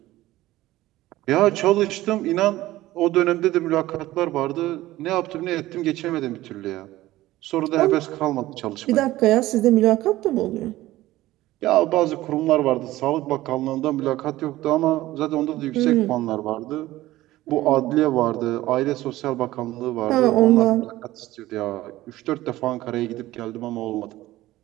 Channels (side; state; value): left; quieter; 16.5 dB